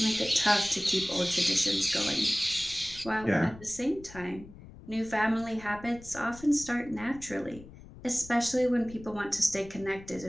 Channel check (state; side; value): noise; left; rumble, 18 dB below the sound